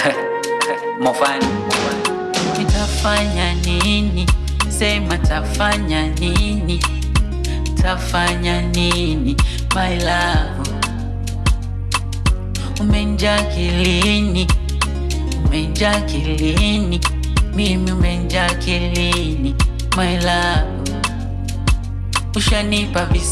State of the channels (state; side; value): identical; both; correlation 1.00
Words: Mofani. Nitafanya nini? Sema tafanya nini? Tafanya nini? My love, umenjaa kilini, umenjaa kilini, mimi umenjaa kilini. My love, ushanipa